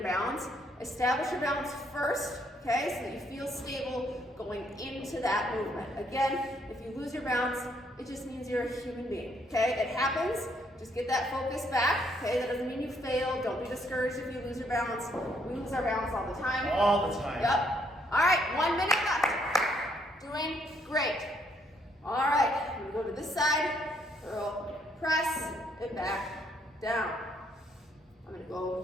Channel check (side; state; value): both; normal; correlation 0.70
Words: balance. Establish your balance first, okay, so that you feel stable going into that movement. Again, if you lose your balance, it just means you're a human being, okay? It happens. Just get that focus back, okay? That doesn't mean you failed. Don't be discouraged if you lose your balance. We lose our balance all the time. All the time. Yep. All right, 1 minute left. Doing great. All right, we go to this. this side, curl, press, and back, down. I'm gonna